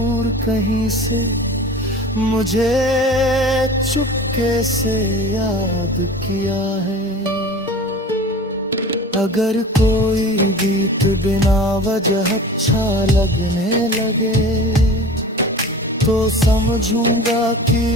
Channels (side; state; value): both; normal; correlation 0.38